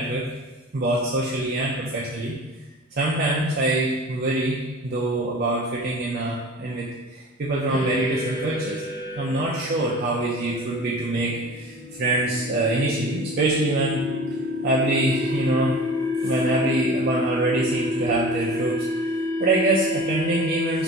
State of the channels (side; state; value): both; normal; correlation 0.39